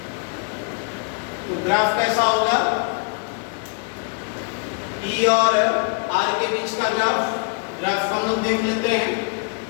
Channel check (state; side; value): quieter; right; 39.1 dB